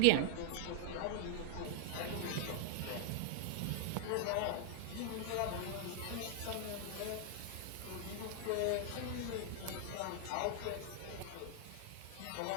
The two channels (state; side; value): different; both; correlation 0.00